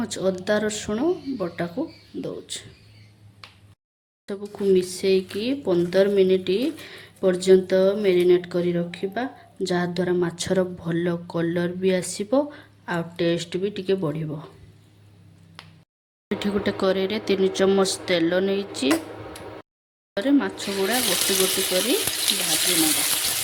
अदा रसुण बटा को दउची। सबको मिसेकी 15 मिनिट पर्यंत मैरिनेट करी रखिबा, जहा द्वारा माछर भल कलर भी आसीबो आ टेस्ट भी टिके बढ़िबो। एठी गोटे करेई रे 3 चम्मच तेल नेइची, रे माछ गुडा गोटी गोटी करी भाजी नबा।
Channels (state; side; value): identical; both; correlation 1.00